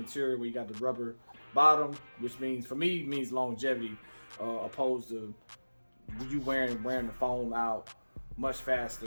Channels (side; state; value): both; inverted; correlation -1.00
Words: where you got the rubber bottom, which means for me means longevity, opposed to you wearing the foam out much